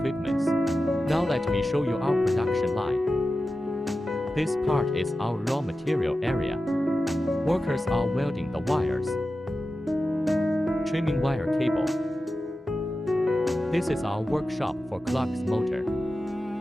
Now let me show you our production line. This part is our raw material area. Workers are welding the wires, trimming wire cable. This is our workshop for Klux motor.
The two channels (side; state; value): both; normal; correlation 0.93